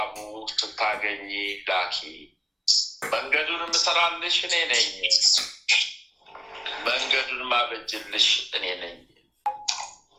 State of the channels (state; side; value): identical; both; correlation 1.00